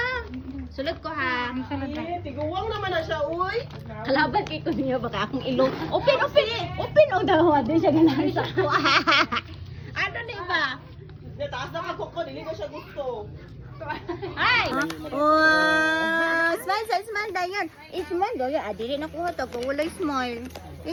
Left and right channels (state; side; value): identical; both; correlation 1.00